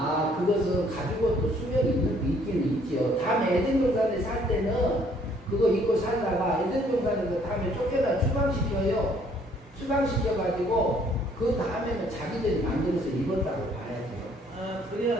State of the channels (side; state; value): both; normal; correlation 0.62